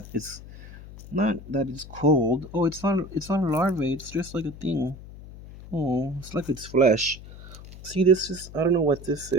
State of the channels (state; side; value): noise; left; hum, 16 dB below the sound